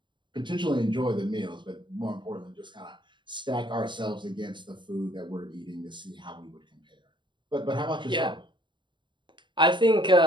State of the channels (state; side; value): late; left; 0.23 ms